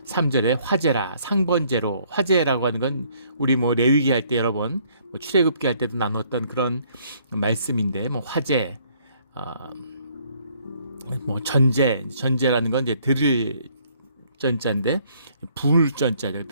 3절에 화제라, 상번제로. 화제라고 하는 건 우리 레위기 할 때 여러 번 출애굽기 할 때도 나눴던 그런 말씀인데 화제, 전제라는 건 이제 들을 전자인데 불 전자가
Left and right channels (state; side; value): inverted; both; correlation -0.64